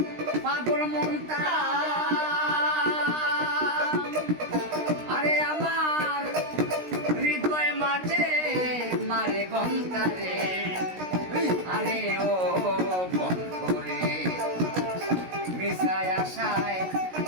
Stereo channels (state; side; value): late; left; 16 ms